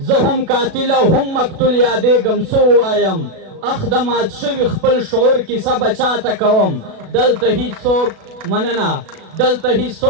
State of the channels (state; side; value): late; left; 37 ms